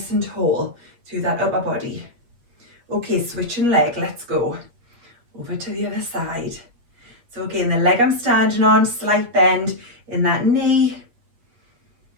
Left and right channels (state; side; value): late; left; 8.3 ms